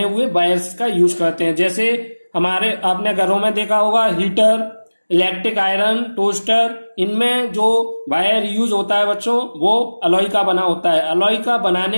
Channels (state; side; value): inverted; both; correlation -1.00